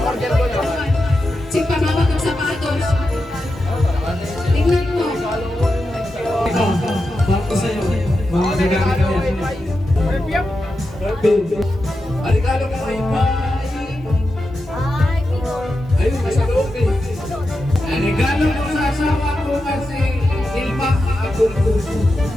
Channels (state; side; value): normal; both; correlation 0.89